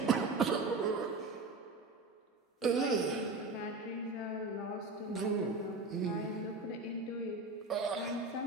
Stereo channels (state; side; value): quieter; left; 3.4 dB